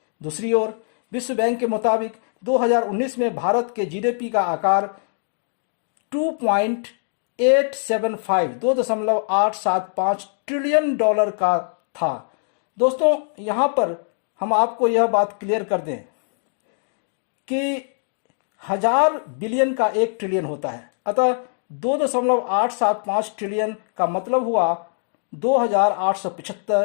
दूसरी ओर विश्व बैंक के मुताबिक 2019 में भारत के जीडीपी का आकार 2.875 ट्रिलियन डॉलर का था। दोस्तों, यहाँ पर हम आपको यह बात क्लियर कर दें कि 1000 बिलियन का 1 ट्रिलियन होता है, अतः 2.875 ट्रिलियन का मतलब हुआ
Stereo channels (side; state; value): right; silent; digital silence